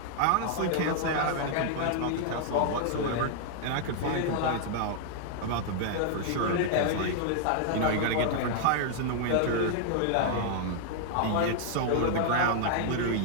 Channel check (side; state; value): both; different; correlation 0.00